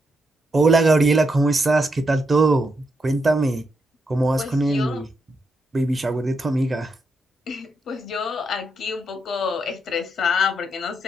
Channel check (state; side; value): normal; both; correlation 0.81